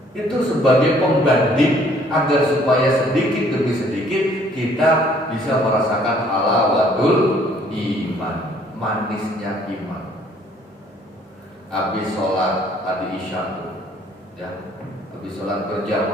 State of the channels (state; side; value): normal; both; correlation 0.60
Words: Itu sebagai pembanding agar supaya sedikit demi sedikit kita bisa merasakan halawatul iman, manisnya iman. Habis sholat tadi isya, ya, habis sholat